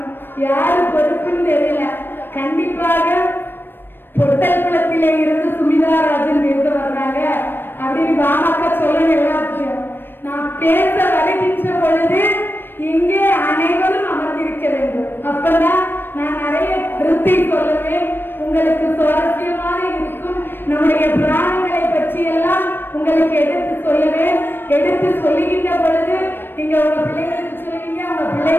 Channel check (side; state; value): right; late; 0.098 ms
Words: யாரு பொறுப்புன்னு தெரியல. கண்டிப்பாக பொட்டல்குளத்திலே இருந்து சுமிதாராஜன் பேச வர்றாங்க அப்படின்னு பாமக சொல்லணும். எல்லாத்தையும் நான் பேச வருகின்ற பொழுது இங்கே அனைவரும் அமர்ந்திருக்க வேண்டும். அப்பதான் நான் நிறைய கருத்தை சொல்லுவேன். உங்களுக்கு சுவாரஸ்யமாக இருக்கும். நம்முடைய புராணங்களை பற்றி எல்லாம் உங்களுக்கு எடுத்து சொல்லுவேன். எடுத்து சொல்லுகின்ற பொழுது நீங்க உங்க பிள்ளைங்களுக்கு சொல்லுவீங்க, உங்க